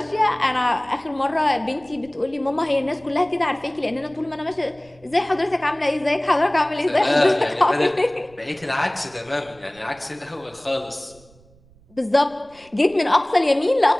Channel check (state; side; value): noise; right; rumble, 28 dB below the sound